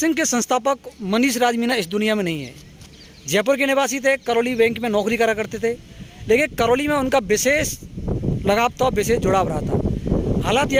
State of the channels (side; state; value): both; identical; correlation 1.00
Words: के संस्थापक मनीष राज मीना इस दुनिया में नहीं है। जयपुर के निवासी थे, करौली बैंक में नौकरी करा करते थे, लेकिन करौली में उनका विशेष लगाव था, विशेष जुड़ाव रहा था। हालात यह